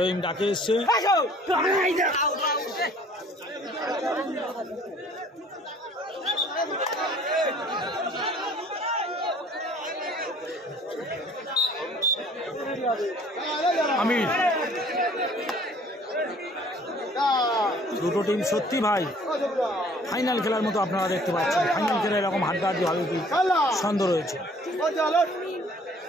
ডাকে এসছে। আমির, দুটো টিম সত্যি ভাই ফাইনাল খেলার মতো আপনারা দেখতে পাচ্ছেন। ফাইনাল খেলা এরকম হাড্ডাহাড্ডি হবে কি সন্দেহ রয়েছে।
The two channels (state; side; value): normal; both; correlation 0.54